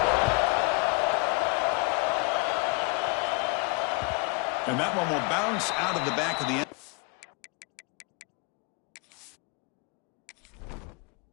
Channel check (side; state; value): right; quieter; 30.5 dB